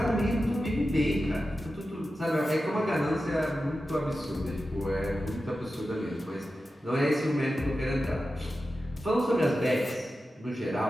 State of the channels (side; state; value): both; normal; correlation 0.92